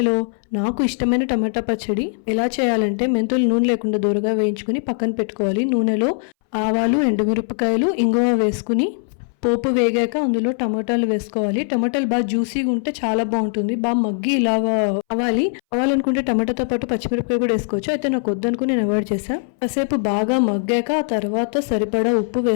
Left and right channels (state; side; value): silent; right; 63 dB below the other